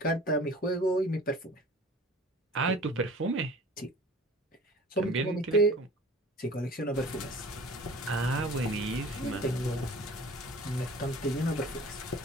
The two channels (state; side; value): normal; both; correlation 0.45